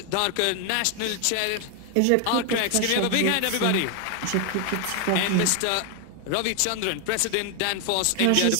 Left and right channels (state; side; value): different; both; correlation 0.00